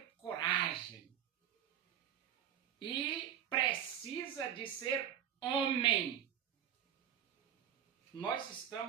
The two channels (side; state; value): left; quieter; 9.7 dB